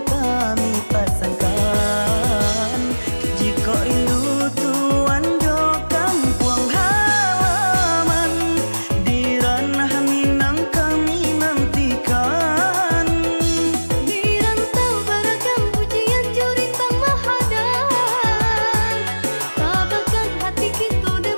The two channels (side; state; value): both; inverted; correlation -1.00